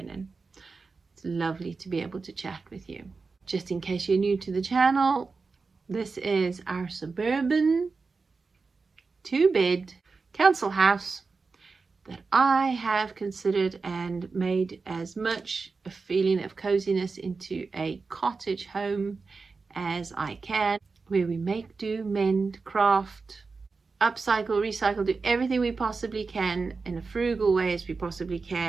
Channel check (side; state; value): left; quieter; 4.4 dB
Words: It's lovely to be able to chat with you. Just in case you're new to the channel, this is our suburban 2-bed council house that I have considered and made as much a feeling of coziness into a cottage home as I can, where we make, do, mend, craft, upcycle, recycle, do everything we possibly can in a frugal way as we possibly